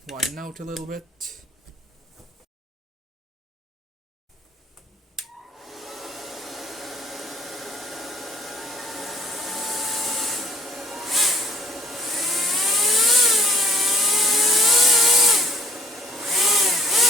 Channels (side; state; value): both; normal; correlation 0.58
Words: widen out a little bit.